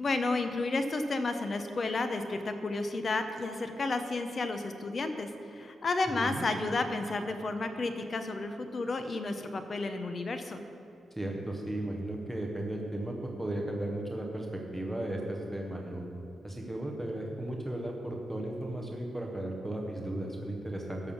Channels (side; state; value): both; normal; correlation 0.88